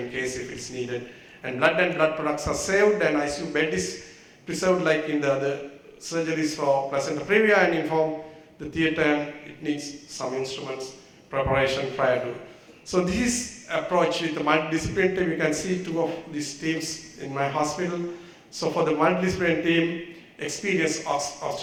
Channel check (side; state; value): both; identical; correlation 1.00